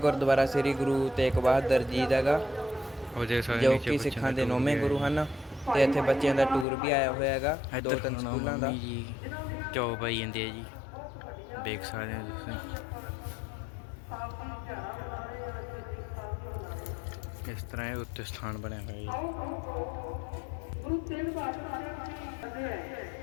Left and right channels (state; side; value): drops out; right; at 6.7 s